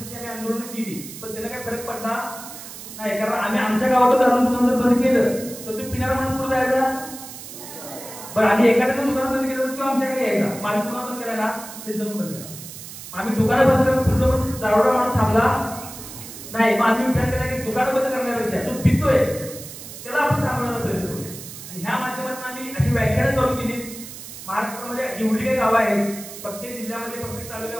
आम्ही आंदोलन केली, पण त्याला काय फरक पडला नाही. कारण आम्ही आमच्या गावात दारू दुकान जर बंद केलं तर तो पिणारा माणूस पुढे जायचा. बरं, आम्ही एखाद्याचं दुकान बंद केलं किंवा आमच्याकडे यायचा, माझं दुकान बंद करायला त्यांचं पण बंद करा. आम्ही दुकानं बंद करत पुढलं पण दारूचा माणूस थांबला नाही. मग आम्ही विचार केला की दुकानं बंद करण्यापेक्षा तो पितोय त्याला आपण थांबवण्याचा प्रयत्न करूया. आणि ह्या माध्यमातून आम्ही अशी व्याख्यानं चालू केली. महाराष्ट्रामध्ये जेवढी काही गावं आहेत, प्रत्येक जिल्ह्यामध्ये, प्रत्येक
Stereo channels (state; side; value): noise; right; hiss, 13 dB below the sound